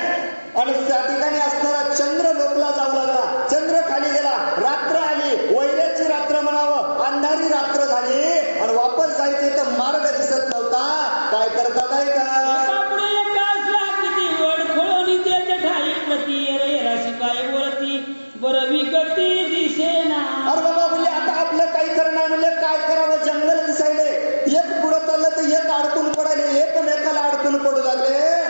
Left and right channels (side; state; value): both; inverted; correlation -1.00